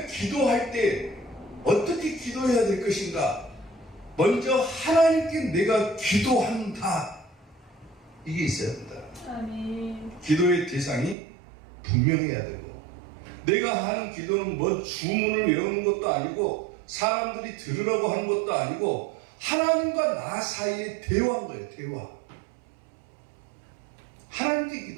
기도할 때 어떻게 기도해야 될 것인가? 먼저 하나님께 내가 기도한다. 이게 있어야 된다. 아멘. 기도의 대상이 분명해야 되고, 내가 하는 기도는 뭐 주문을 외우는 것도 아니고 사람들이 들으라고 하는 것도 아니고 하나님과 나 사이의 대화인 거예요. 대화. 하나님께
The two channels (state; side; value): drops out; left; at 11.2 s